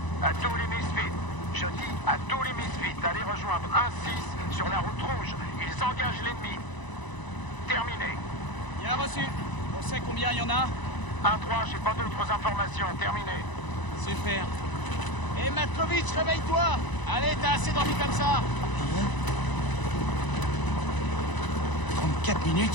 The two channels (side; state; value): right; late; 1.0 ms